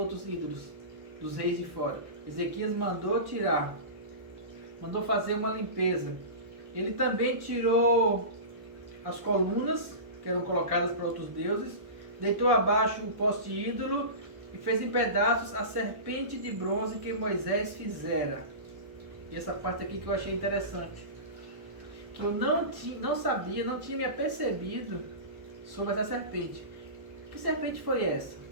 ídolos, dos reis de fora. Ezequias mandou tirar, mandou fazer uma limpeza. Ele também tirou as colunas que eram colocadas para outros deuses, deitou abaixo o poste ídolo e fez em pedaços a serpente de bronze que Moisés fizera. E essa parte aqui que eu achei interessante, que eu não sabia, não tinha me apercebido sobre essa serpente. Que serpente foi essa?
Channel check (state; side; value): late; left; 1.1 ms